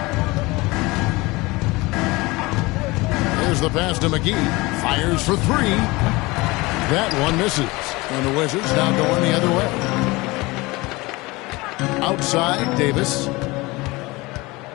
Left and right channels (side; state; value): right; quieter; 22.6 dB